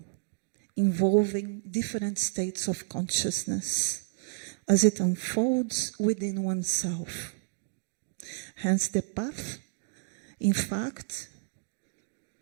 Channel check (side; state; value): left; silent; digital silence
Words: involving different states of consciousness as it unfolds within oneself. Hence, the path, in fact,